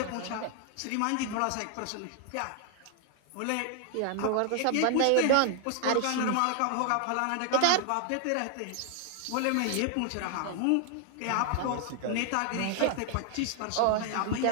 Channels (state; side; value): different; both; correlation 0.00